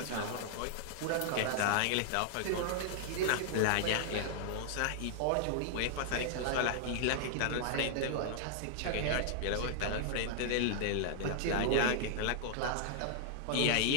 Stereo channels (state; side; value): different; both; correlation -0.01